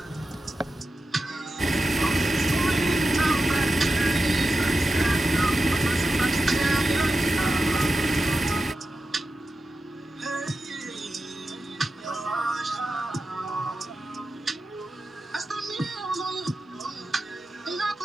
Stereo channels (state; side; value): normal; both; correlation 0.91